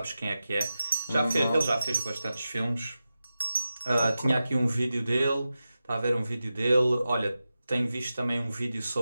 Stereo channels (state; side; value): inverted; both; correlation -0.93